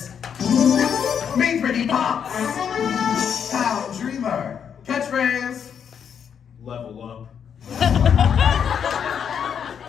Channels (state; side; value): quieter; right; 7.7 dB